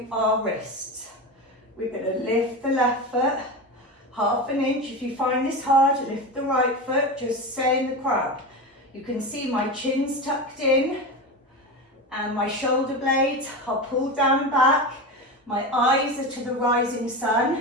our wrists. We're going to lift the left foot, 1/2 inch. If you find this hard, lift the right foot, just stay in the crab. You can see my chin's tucked in and my shoulder blades are pulled down and back. My eyes are to the rising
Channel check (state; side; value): normal; both; correlation 0.22